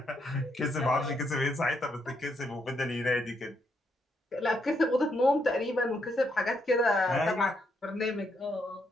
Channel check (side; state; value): both; normal; correlation 0.77